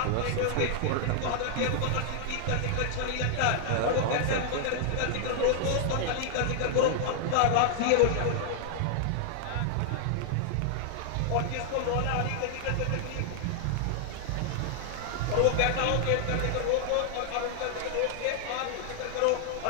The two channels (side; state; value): both; different; correlation 0.00